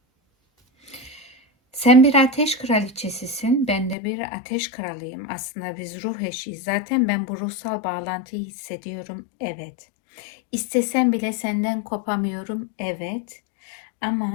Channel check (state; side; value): drops out; right; at 4.0 s